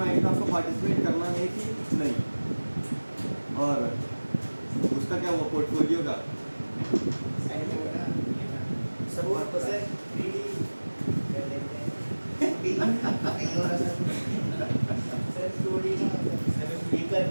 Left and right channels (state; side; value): inverted; both; correlation -1.00